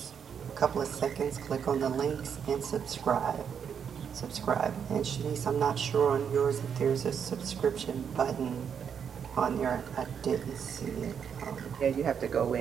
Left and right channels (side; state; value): left; quieter; 7.5 dB